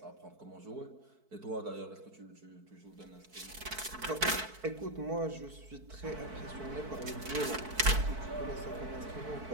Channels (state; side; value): late; left; 4.6 ms